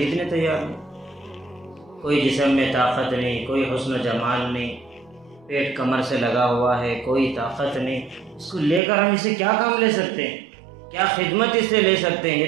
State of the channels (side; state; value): left; drops out; at 8.8 s